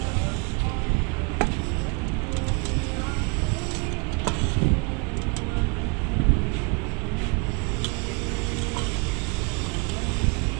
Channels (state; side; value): quieter; left; 32.4 dB